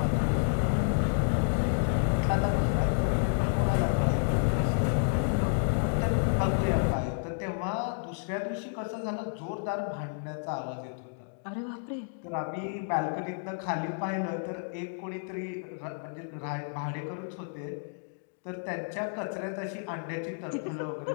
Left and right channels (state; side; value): silent; right; digital silence